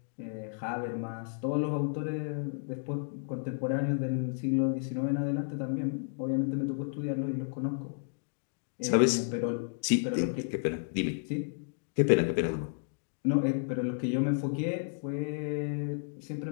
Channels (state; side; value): silent; right; digital silence